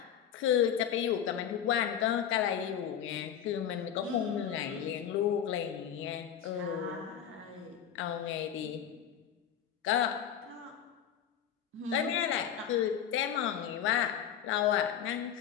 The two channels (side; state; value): right; quieter; 9.2 dB